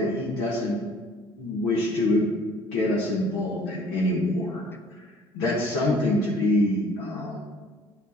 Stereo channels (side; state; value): both; normal; correlation 0.54